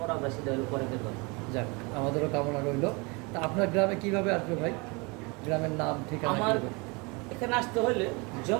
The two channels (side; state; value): left; quieter; 28.6 dB